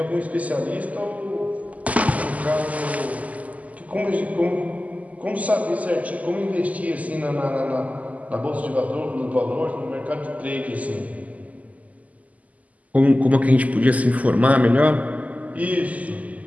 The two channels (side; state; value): left; late; 0.074 ms